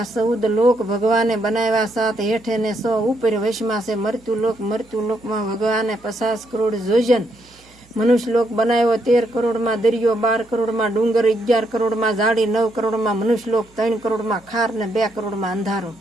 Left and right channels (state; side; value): noise; right; hum, 29 dB below the sound